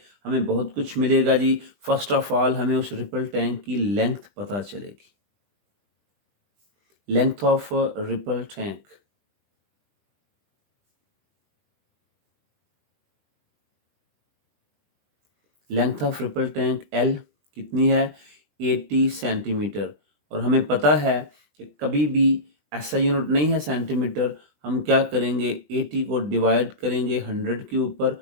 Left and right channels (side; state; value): left; late; 20 ms